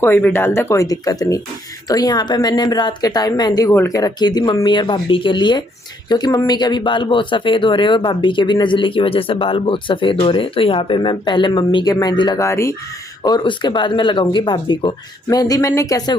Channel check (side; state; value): both; normal; correlation 0.70